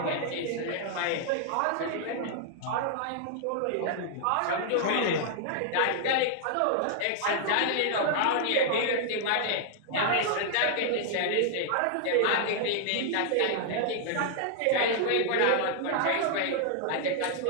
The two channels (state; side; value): different; both; correlation 0.00